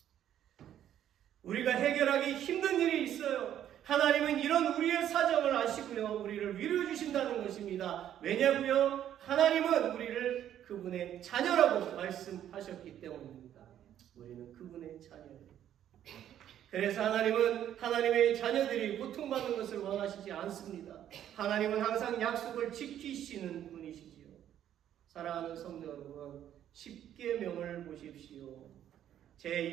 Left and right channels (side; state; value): left; quieter; 10.8 dB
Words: 우리가 해결하기 힘든 일이 있어요. 하나님은 이런 우리의 사정을 아시고요, 우리를 위로해 주신다는 것입니다. 왜냐고요? 하나님은 우리를 그분의 자녀라고 말씀하셨기 때문입니다. 우리는 그분의 자녀예요. 그래서 하나님은 하나님의 자녀들이 고통받는 것을 원하시지 않습니다. 하나님은 항상 약속을 지키시는 분이시지요. 사랑하는 성도 여러분, 10계명을 보십시오.